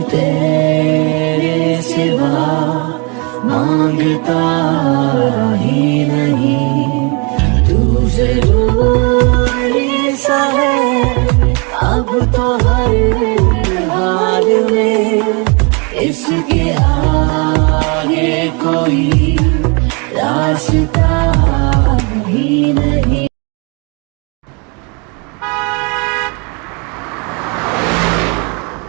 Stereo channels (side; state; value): left; quieter; 32.7 dB